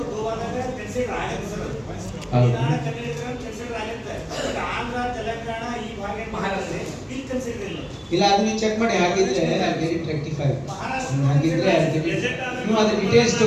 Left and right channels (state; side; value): identical; both; correlation 1.00